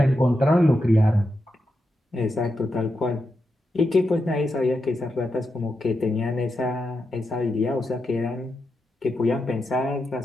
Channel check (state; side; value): normal; both; correlation 0.87